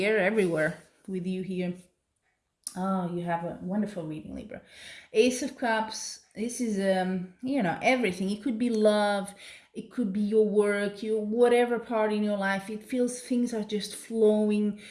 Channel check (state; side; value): identical; both; correlation 1.00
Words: air everywhere with you here. Oh, you have a wonderful reading, Libra. Ace of Cups. This is, everything. It could be love. It could be your work, your whatever part in your life. It feels things are just flowing